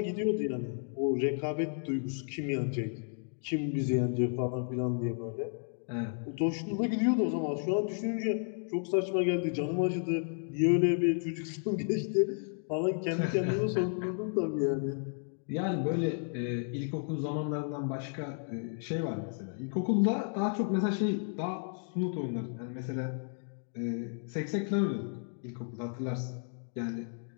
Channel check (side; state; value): right; silent; 56 dB below the other